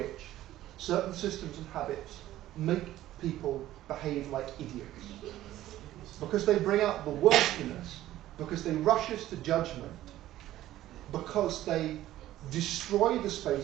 certain systems and habits make people behave like idiots. Because they bring out the worst in us, because they rush us to judgment, because they destroy the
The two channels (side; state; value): left; quieter; 14.2 dB